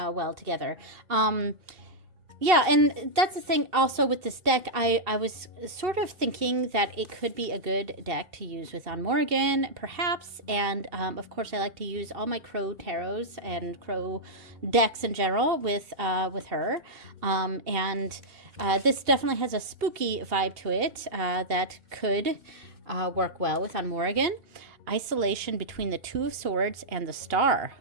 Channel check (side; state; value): left; late; 2.7 ms